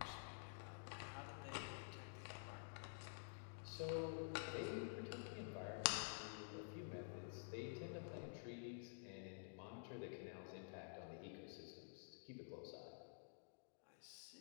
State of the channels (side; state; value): right; silent; digital silence